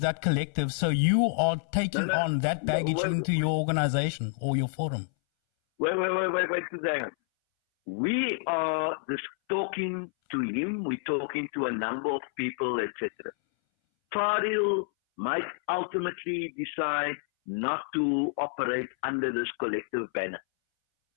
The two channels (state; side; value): silent; right; 59 dB below the other